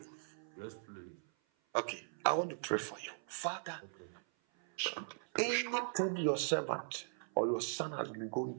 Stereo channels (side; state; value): left; silent; 52 dB below the other